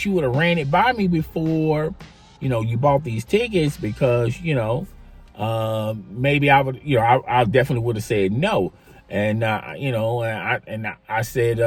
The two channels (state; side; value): identical; both; correlation 1.00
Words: you would have ran it by me before, you bought these tickets because, maybe I would, I definitely would have said no. And, I said,